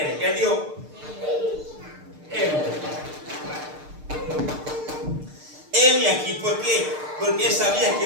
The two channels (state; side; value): late; left; 6.6 ms